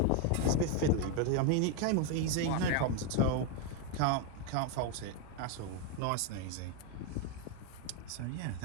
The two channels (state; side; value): different; both; correlation 0.02